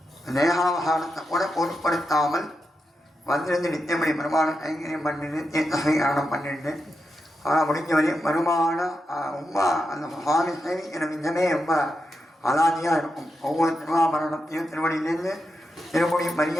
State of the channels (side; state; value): both; normal; correlation 0.87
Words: தேகாவகாரத்தை கூட பொருட்படுத்தாமல் வந்திருந்து நித்தியபடி பெருமாள் கைங்கரியம் பண்ணிட்டு தீர்த்தம் பண்ணிட்டு முடிஞ்ச வரையும் பெருமான ரொம்ப அந்த சுவாமி சேவிக்கிற விதமே ரொம்ப அலாதியாக இருக்கும். ஒவ்வொரு திருவாபரணத்தையும் திருவடியிலேருந்து திருமுடி